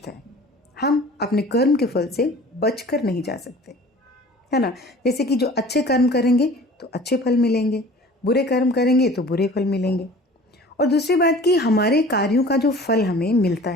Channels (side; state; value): both; normal; correlation 0.45